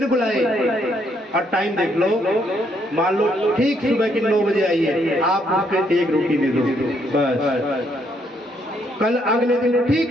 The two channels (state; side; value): normal; both; correlation 0.72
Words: बुलाए और टाइम देख लो, मान लो ठीक सुबह की 9 बजे आई है, आप उसको 1 रोटी दे दो बस। कल अगले दिन